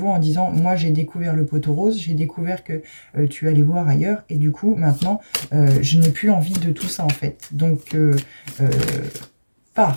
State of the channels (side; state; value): both; inverted; correlation -1.00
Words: en disant « Moi, j'ai découvert le poteau rose, j'ai découvert que tu allais voir ailleurs et du coup, maintenant, je n'ai plus envie de tout ça en fait. Donc,